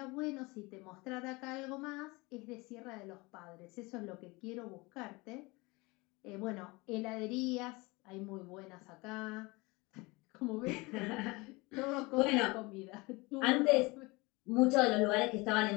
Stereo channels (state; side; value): quieter; right; 24.5 dB